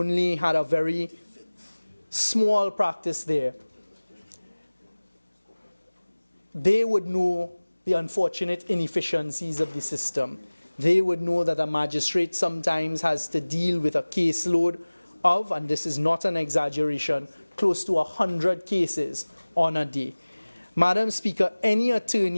had a very small practice there. They would know the unfortunate inefficiencies of the system. They would know that a magistrate sometimes has to deal with a caseload of, and this is not an exaggeration, close to 100 cases on a day. Madam Speaker, any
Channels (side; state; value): both; inverted; correlation -1.00